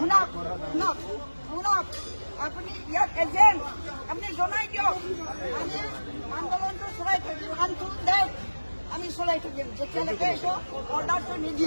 শুনক আপুনি ইয়াত এজেণ্ট আপুনি জনাই দিয়ক। আমি আন্দোলনটো চলাই থাকিম আমি চলাই থাকিম যেতিয়ালৈকে এইটো অৰ্ডাৰটো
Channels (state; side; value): inverted; both; correlation -1.00